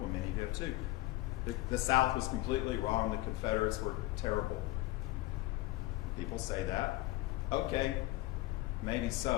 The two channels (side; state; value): right; quieter; 18.5 dB